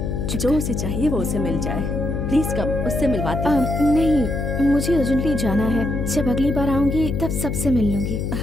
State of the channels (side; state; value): left; noise; hum, 2 dB below the sound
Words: जो उसे चाहिए वो उसे मिल जाए। प्लीज कम, उससे मिलवाती हूँ। नहीं, मुझे अर्जेंटली जाना है। जब अगली बार आऊंगी तब सबसे मिल लूंगी।